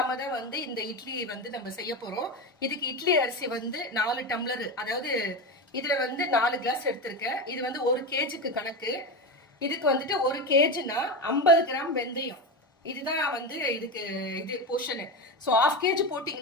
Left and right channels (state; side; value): normal; both; correlation 0.19